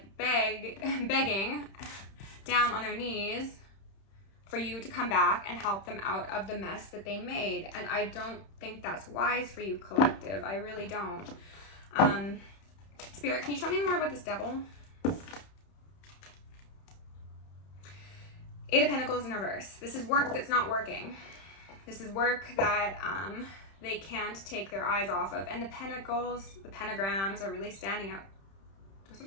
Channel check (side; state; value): right; late; 31 ms